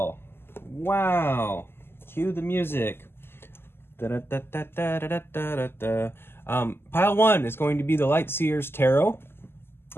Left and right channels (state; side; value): late; right; 0.11 ms